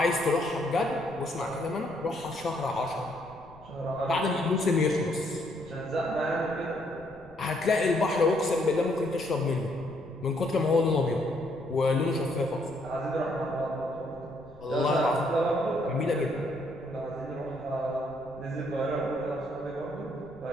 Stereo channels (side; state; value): left; noise; rumble, 24 dB below the sound